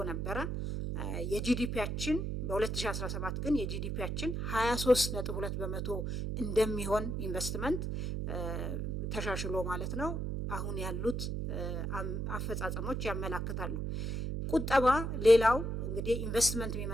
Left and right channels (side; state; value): right; noise; hum, 2 dB below the sound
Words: ነበረ። የጂዲፒያችን በ2017 ግን የጂዲፒያችን 23.2 በመቶ እንደሚሆን ኢንቨስትመንት ተሻሽሎ ማለት ነው አሁን ያሉት አፈጻጸሞች ያመላክታሉ። ቁጠባ ሌላው እንግዲህ ኢንቨስትመንት